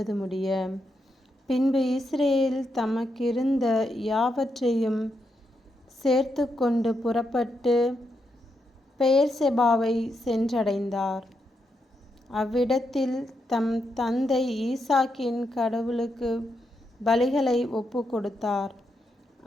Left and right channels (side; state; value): both; normal; correlation 0.82